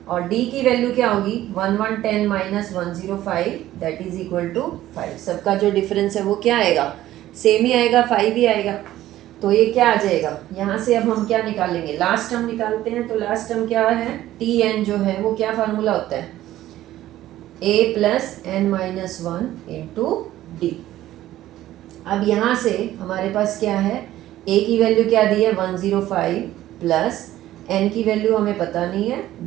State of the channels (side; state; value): left; quieter; 14.2 dB